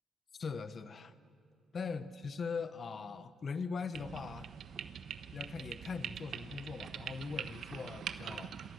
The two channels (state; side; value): normal; both; correlation 0.78